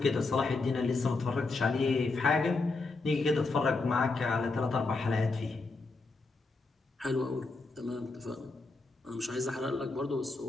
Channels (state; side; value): quieter; right; 3.6 dB